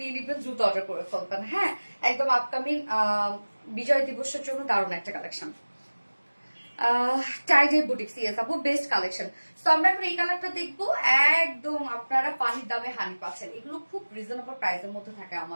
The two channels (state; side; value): inverted; both; correlation -1.00